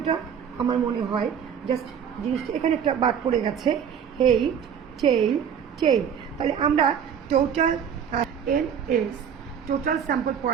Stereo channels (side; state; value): left; quieter; 8.0 dB